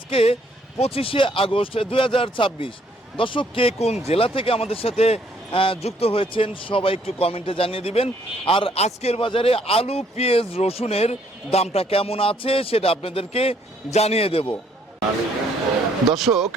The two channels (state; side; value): normal; both; correlation 0.66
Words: 25শে আগস্ট 2026। দর্শক, কে কোন জেলা থেকে আমাদের সাথে যুক্ত হয়েছেন সবাই একটু কমেন্টে জানিয়ে দিবেন। আর আজকের বাজারে আলু, পেঁয়াজ, রসুনের দামটা কেমন আছে সেটা আপনাদেরকে জানিয়ে দেব। দর্শক,